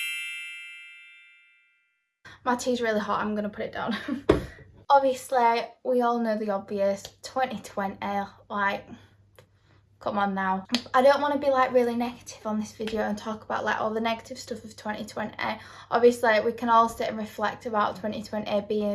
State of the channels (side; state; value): both; identical; correlation 1.00